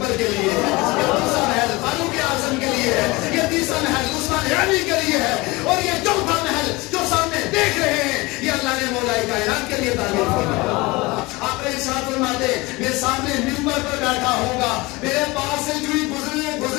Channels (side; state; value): right; quieter; 22.9 dB